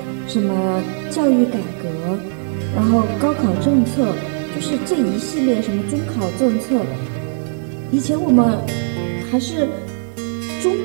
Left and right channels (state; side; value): silent; left; digital silence